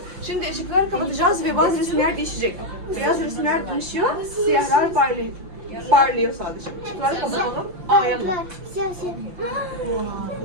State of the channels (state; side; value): late; left; 5.9 ms